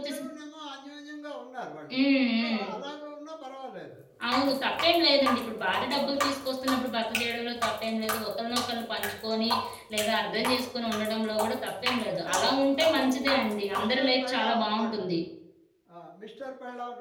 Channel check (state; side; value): identical; both; correlation 1.00